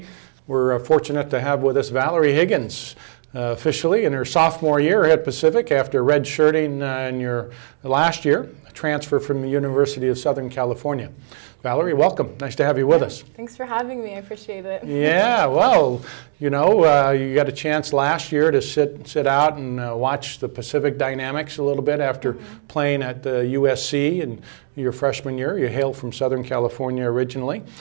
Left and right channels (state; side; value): silent; left; digital silence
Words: we're fortunate to have with us Valerie Higgins, officially in her sophomore year at Pacific after redshirting in your last year, a transfer from the University of Southern California. Valerie, welcome. Nice to have you with us. Thanks for having me. I appreciate it. Yeah, well, you know, you got a chance last year to sit out and watch the Pacific dynamics a little bit after playing at USC in your freshman year. You hail from Southern California originally.